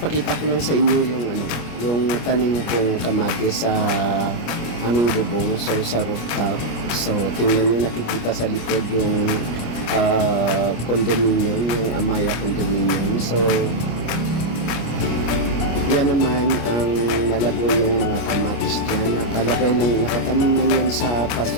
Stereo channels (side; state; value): right; late; 25 ms